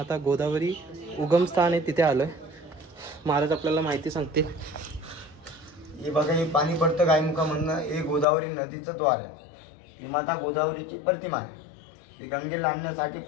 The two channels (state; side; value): drops out; right; at 8.2 s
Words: गोदावरी उगमस्थान आहे तिथे आलोय. महाराज आपल्याला माहिती सांगतील. हे बघा, हे पाणी पडतं गायमुखामधनं. हे गोदावरी नदीचं द्वार आहे. ही माता गोदावरीची प्रतिमा आहे. ही गंगेला आणण्यासाठी